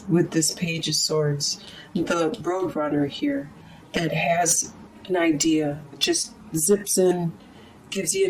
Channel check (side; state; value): both; identical; correlation 1.00